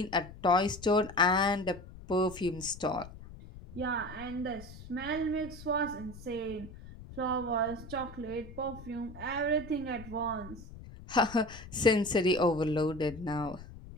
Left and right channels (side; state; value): left; noise; rumble, 15 dB below the sound